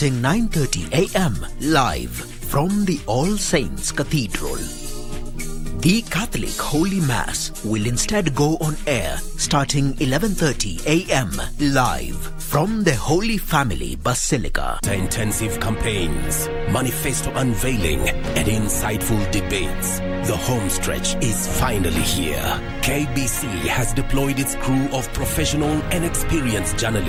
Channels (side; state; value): both; identical; correlation 1.00